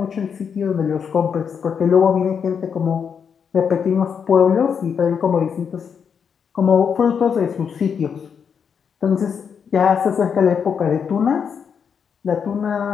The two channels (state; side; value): quieter; right; 6.9 dB